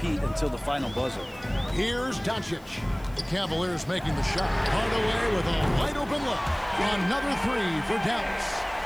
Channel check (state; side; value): noise; left; hiss, 26 dB below the sound